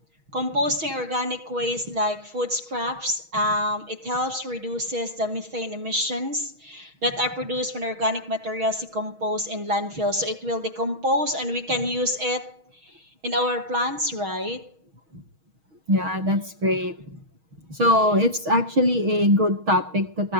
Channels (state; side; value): late; left; 6.3 ms